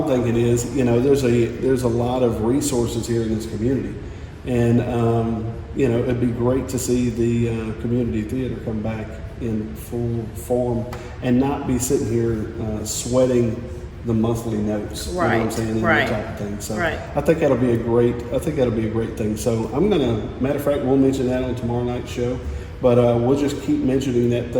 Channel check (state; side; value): identical; both; correlation 1.00